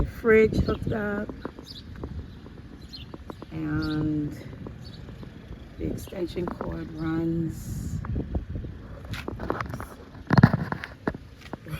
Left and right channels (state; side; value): identical; both; correlation 1.00